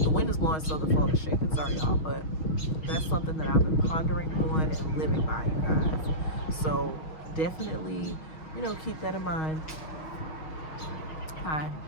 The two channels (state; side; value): late; right; 6.3 ms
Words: The wind is blowing, so the phone is shaking. Sorry, y'all, but that's something that I've been pondering on and living by, you guys. So definitely, you know, keep that in mind. Hi.